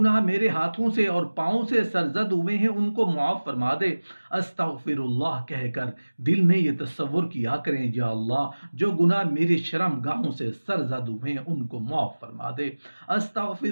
میرے ہاتھوں سے اور پاؤں سے سرزد ہوئے ہیں ان کو معاف فرما دے۔ استغفر اللہ کہہ کر دل میں یہ تصور کیا کریں، یا اللہ جو گناہ میری شرم گاہوں سے سرزد ہوئے ہیں ان کو معاف فرما دے۔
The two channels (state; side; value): inverted; both; correlation -1.00